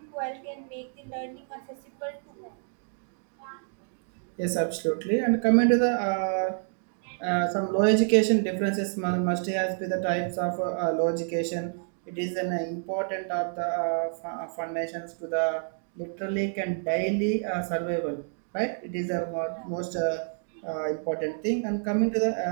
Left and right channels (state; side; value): silent; left; digital silence